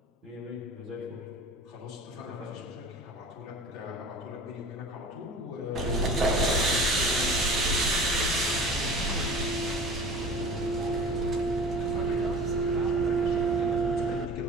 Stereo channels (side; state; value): both; normal; correlation 0.40